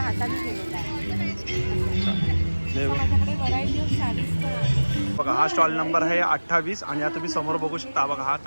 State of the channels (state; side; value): inverted; both; correlation -1.00